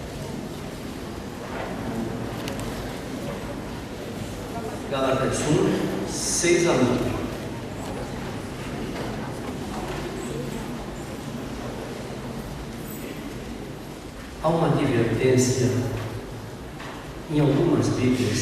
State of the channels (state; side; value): identical; both; correlation 1.00